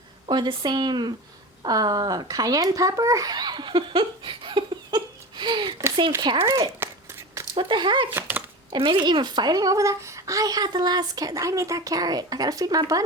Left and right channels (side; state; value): both; normal; correlation 0.29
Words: Or the same cayenne pepper? The same carrot? What the heck? And maybe even fighting over that? I had the last carrot. I need that carrot. I gotta feed my